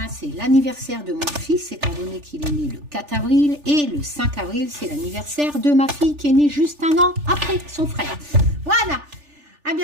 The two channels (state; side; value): late; left; 3.4 ms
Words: c'est l'anniversaire de mon fils, étant donné qu'il est né le 4 avril. Et le 5 avril, c'est l'anniversaire de ma fille qui est née juste un an après son frère. Voilà. À